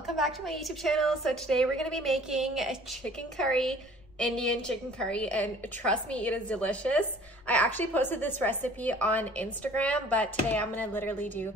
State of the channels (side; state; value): left; noise; rumble, 26 dB below the sound